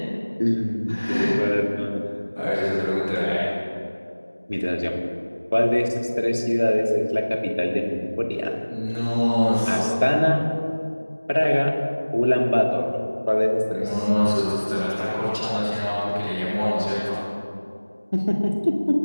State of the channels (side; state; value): both; inverted; correlation -1.00